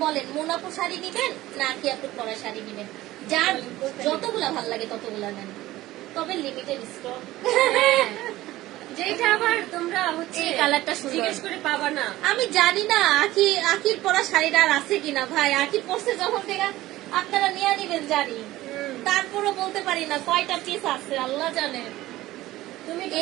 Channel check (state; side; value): quieter; left; 16.6 dB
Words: বলেন মোনাপু শাড়ি নিবেন না কি আপু পরা শাড়ি নিবেন? যার যতগুলা ভাল লাগে ততগুলা নেন, তবে লিমিটেড স্টক। যেটা আবার তোমরা হচ্ছে এই কালারটা সুন্দর, জিজ্ঞেস করে পাবা না। আমি জানি না আখির পরা শাড়িটা আর আছে কিনা ভাই। আখি পরছে যখন থেকে আপনারা নিয়ে নিবেন জানি, তারপরও বলতে পারি না কয়টা পিস আছে, আল্লাহ জানে। তুমি তো